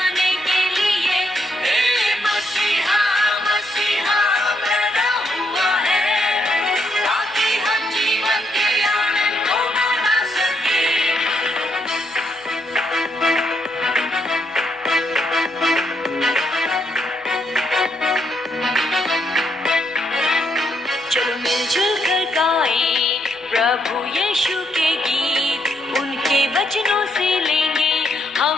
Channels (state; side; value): noise; right; hum, 30 dB below the sound